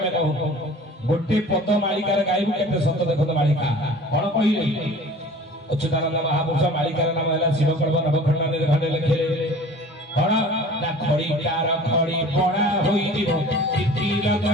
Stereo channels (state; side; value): normal; both; correlation 0.44